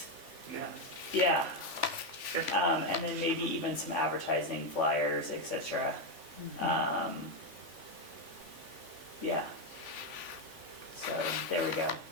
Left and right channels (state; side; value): late; left; 3.5 ms